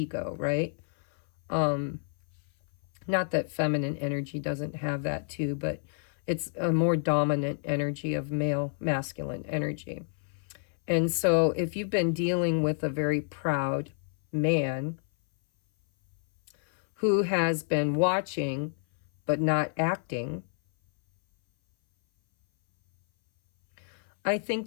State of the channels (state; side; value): silent; right; 59 dB below the other